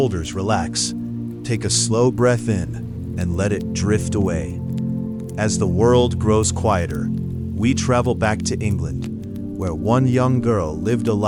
relax. Take a slow breath in and let it drift away. As the world grows quieter, we travel back to England, where one young girl lived a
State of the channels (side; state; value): both; identical; correlation 1.00